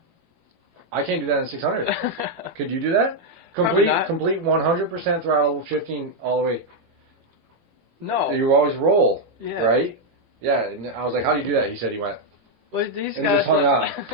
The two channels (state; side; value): late; left; 18 ms